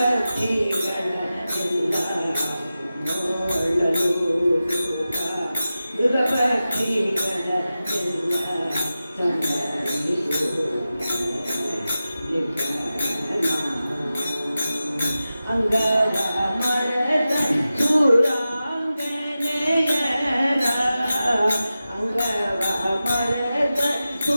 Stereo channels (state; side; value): inverted; both; correlation -0.94